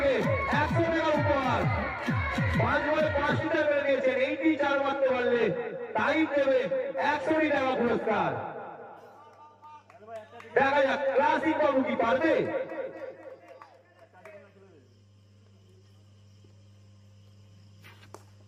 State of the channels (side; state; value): both; identical; correlation 1.00